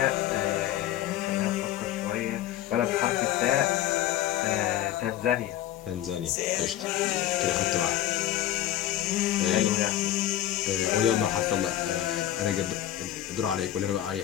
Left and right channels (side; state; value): right; quieter; 12.8 dB